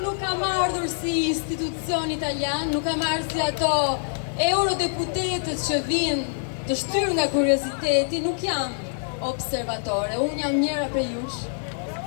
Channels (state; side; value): silent; right; digital silence